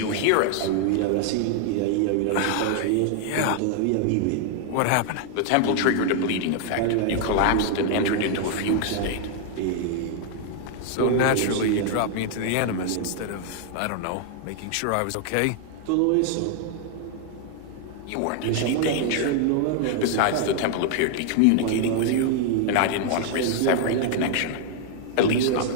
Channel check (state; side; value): different; both; correlation 0.00